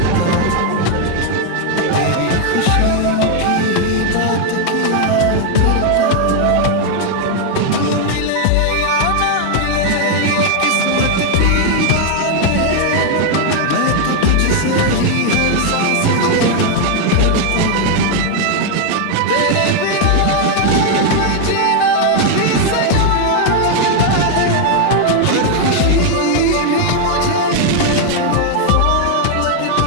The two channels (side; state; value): both; different; correlation 0.01